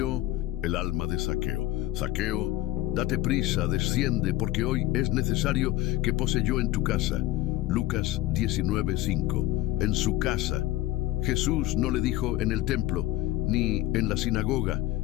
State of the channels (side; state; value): right; quieter; 16.2 dB